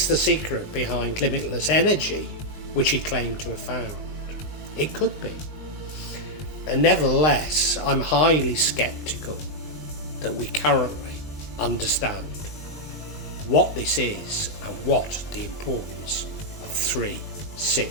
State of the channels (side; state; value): right; late; 19 ms